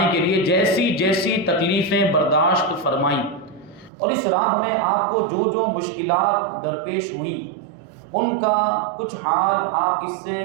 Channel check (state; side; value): drops out; left; at 3.9 s